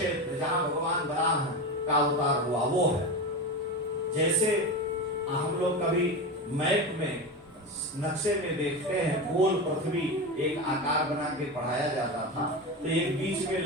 जहां भगवान वराह का अवतार हुआ वो है। जैसे हम लोग कभी मैप में नक्शे में देखते हैं, गोल पृथ्वी एक आकार बना के पढ़ाया जाता था, तो एक बीच में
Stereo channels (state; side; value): normal; both; correlation 0.22